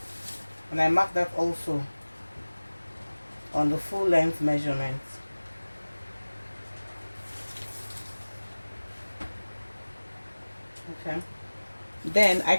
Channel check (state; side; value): inverted; both; correlation -1.00